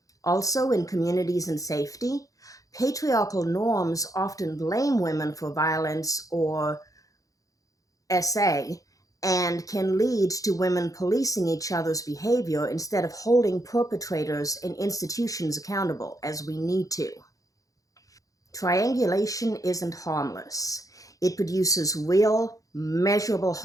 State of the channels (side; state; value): right; late; 0.17 ms